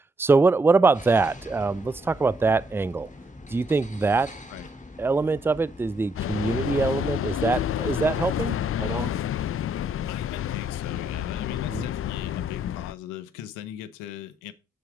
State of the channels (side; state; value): both; normal; correlation 0.73